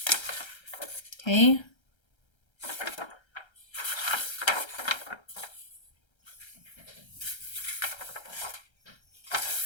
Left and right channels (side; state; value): right; late; 1.3 ms